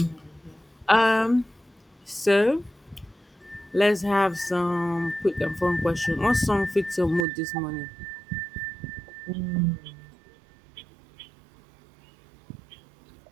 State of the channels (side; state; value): left; drops out; at 7.2 s